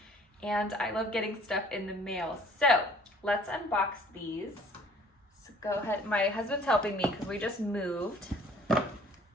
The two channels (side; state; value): both; normal; correlation 0.55